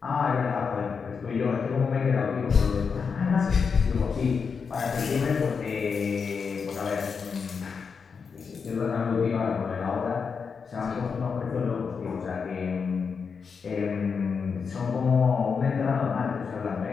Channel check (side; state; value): right; quieter; 5.7 dB